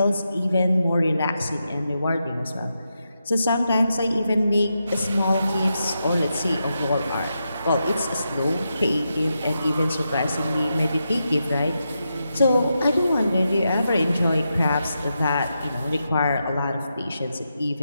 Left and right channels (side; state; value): both; inverted; correlation -0.86